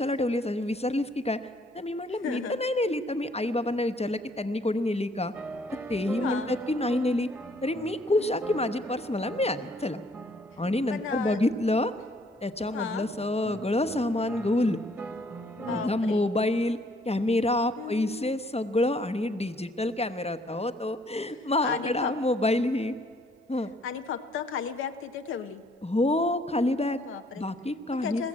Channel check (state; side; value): normal; both; correlation 0.64